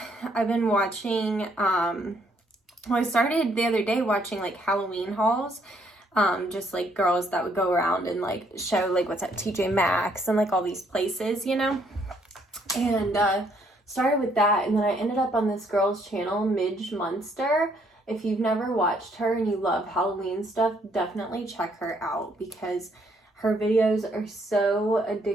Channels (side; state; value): both; normal; correlation 0.69